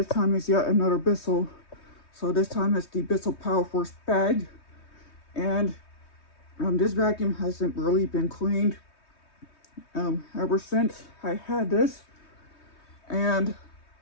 time is yet another Bissell. So this time it's the Bissell Powerforce bag, and this vacuum hasn't really been cleaned ever since I had this. And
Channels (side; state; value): right; late; 3.2 ms